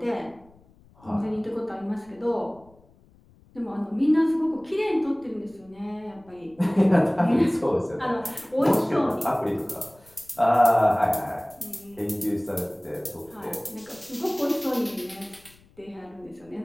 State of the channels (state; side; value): noise; left; rumble, 28 dB below the sound